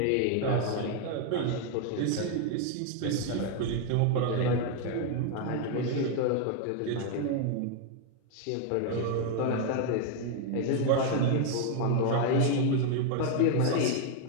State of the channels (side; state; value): both; different; correlation 0.01